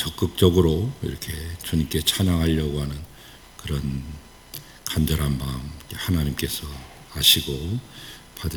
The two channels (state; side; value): identical; both; correlation 1.00